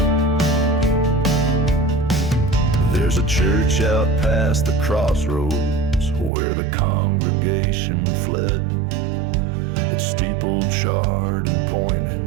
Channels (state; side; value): drops out; left; at 6.3 s